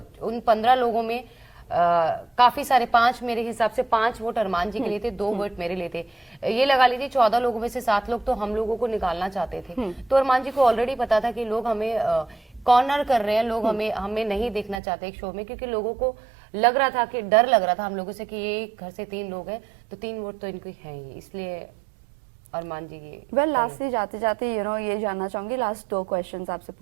उन 15 लोगों में काफी सारे, 5 मेरे हिसाब से 5 वोट अरमान जी के लिए थे, 2 वोट मेरे लिए थे। ये लगा लीजिए 14 लोगों में से 7 लोग तो हम लोगों को निकालना चाहते थे। तो अरमान जी को ऑलरेडी पता था कि लोग हमें कॉर्नर कर रहे हैं, लोग हमें नहीं देखना चाहते एक शो में, क्योंकि लोगों को लग रहा था कि डर लग रहा था हम लोगों से कि ये घर से 3 लोग हैं तो 3 वोट तो इनको हैं ही, इसलिए अरमान जी ये लास्टली जाते जाते ये जानना चाहूंगी, लास्ट 2 क्वेश्चंस आपसे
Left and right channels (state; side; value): drops out; left; at 14.8 s